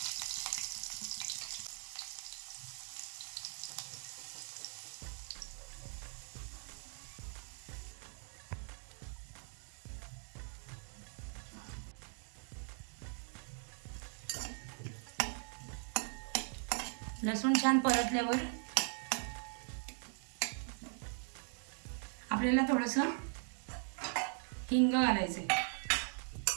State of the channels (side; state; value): left; silent; 51 dB below the other